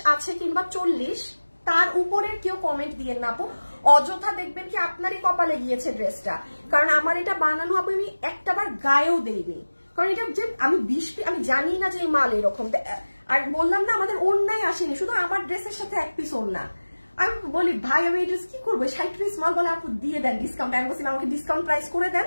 আছে কিংবা 40, তার উপরের কেউ কমেন্ট দিয়েন না আপু, অযথা দেখবেন কি আপনারই কপালে গিয়েছে ড্রেসটা। কারণ আমার এটা বানানো হবে, আমি একটাবার গায়েও দেইনি, কারণ এটা যে আমি জানি না যে এই মাল এরকম। আর বললাম না, আমাদের ওড়নাই আসেনি, শুধু আমার ড্রেসের সাথে 1 পিস ওড়না। আমি বলি ভাই আমি এই ড্রেস কি করবো, 60 পিস মাল, বলে আপু দিয়ে দেন ডিসকাউন্ট। আমি বলছিলাম আমাকে ডিসকাউন্ট প্রাইস করে দেন,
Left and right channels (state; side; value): inverted; both; correlation -1.00